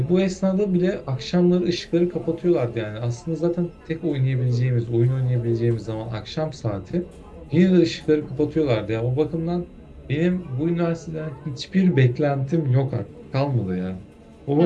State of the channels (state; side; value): identical; both; correlation 1.00